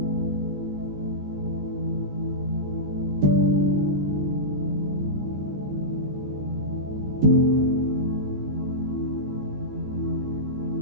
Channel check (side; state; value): left; late; 14 ms